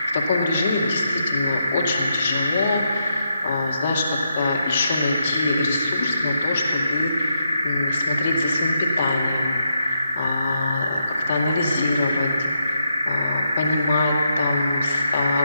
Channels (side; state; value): both; inverted; correlation -0.82